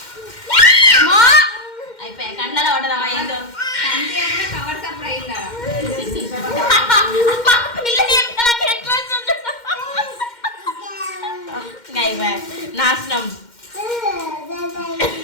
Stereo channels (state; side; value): late; right; 2.1 ms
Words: అయిపోయా. కండ్లలో పడ్డదమ్మా ఏందో. అంతే కూడా కవర్ సప్పుడు అయిందా. నాశనం.